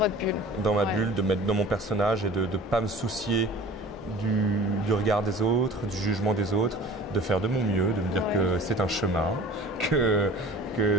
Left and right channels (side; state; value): both; normal; correlation 0.44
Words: bulle. Dans ma bulle, de me mettre dans mon personnage et de ne pas me soucier du regard des autres, du jugement des autres, de faire de mon mieux, de me dire que c'est un chemin, que